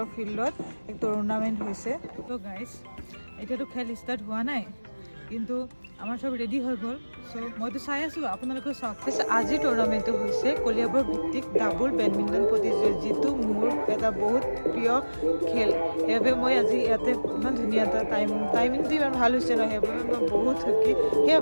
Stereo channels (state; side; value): inverted; both; correlation -1.00